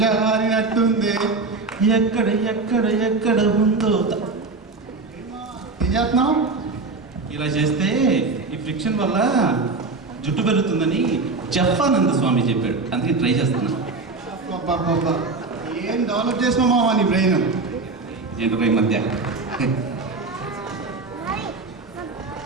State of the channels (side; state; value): left; quieter; 3.9 dB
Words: ఎక్కడ ఎక్కడ ఎక్కడ ఉందో ఏం చేస్తున్నావు? ఇలా చేస్తే ఈ ఫ్రిక్షన్ వల్ల జుట్టు పెరుగుతుందని జఫానంద స్వామి చెప్పాడు, అందుకే ట్రై చేస్తున్నాను. అబ్బబ్బబ్బా, ఏం డెవలప్ చేసినావు మావా నీ బ్రెయిన్? ఏంటో ఈ మధ్య